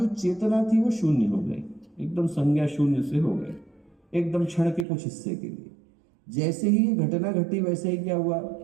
चेतना थी वो शून्य हो गई, एकदम संज्ञा शून्य से हो गए, एकदम क्षण के कुछ हिस्से के लिए। जैसे ही ये घटना घटी वैसे ही क्या हुआ,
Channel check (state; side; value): drops out; left; at 4.9 s